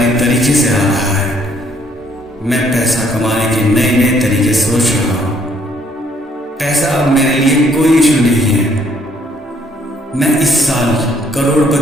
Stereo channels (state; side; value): normal; both; correlation 0.66